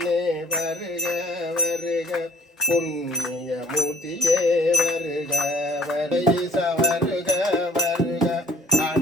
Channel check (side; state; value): both; normal; correlation 0.55